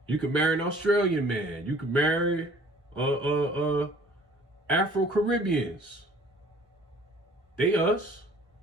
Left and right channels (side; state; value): both; normal; correlation 0.53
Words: You could marry an Australian man. You could marry Afro-Caribbeans. They us.